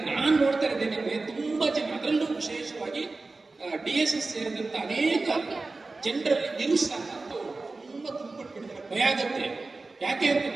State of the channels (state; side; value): quieter; left; 3.5 dB